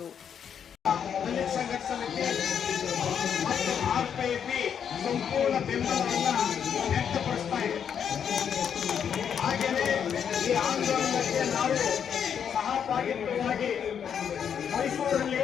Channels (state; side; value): quieter; right; 8.0 dB